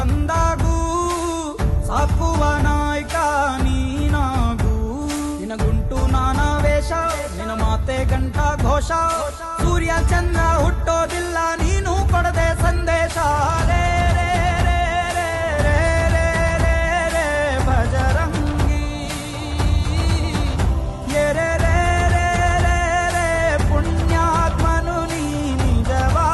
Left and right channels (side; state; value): both; identical; correlation 1.00